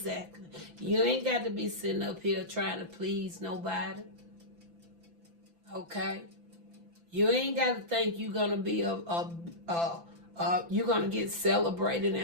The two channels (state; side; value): late; left; 5.9 ms